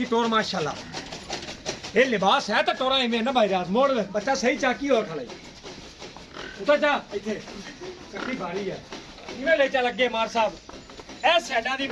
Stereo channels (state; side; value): identical; both; correlation 1.00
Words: टोर माशाल्लाह। ये लिबास है तो टोरा इवें ना भाई रात मोड़ ले बच्चा सही चाकी हो खड़े उतर जा इथे कट्टी भारी है इवें ले चल अगे मार साहब। ए साइडा दी